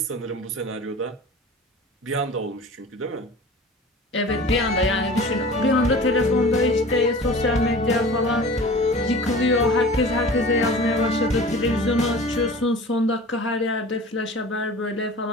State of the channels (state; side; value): normal; both; correlation 0.40